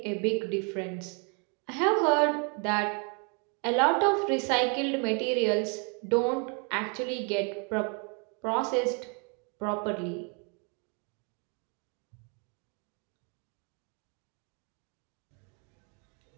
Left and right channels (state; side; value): quieter; left; 36.4 dB